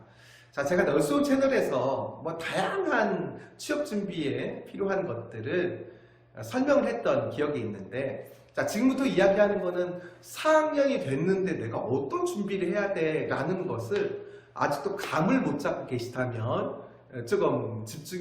자, 제가 널스온 채널에서 다양한 취업 준비에 필요한 것들을 설명을 했던 기억이 있는데, 자, 지금부터 이야기하는 거는 4학년이 됐는데 내가 어떤 준비를 해야 돼 라는 것을 아직도 감을 못 잡고 계시다면 조금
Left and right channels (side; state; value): both; identical; correlation 1.00